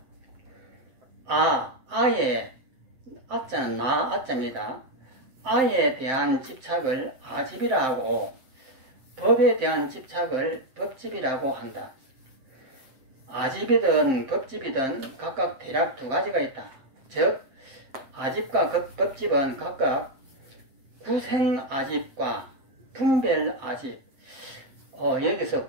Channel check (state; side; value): late; left; 7.6 ms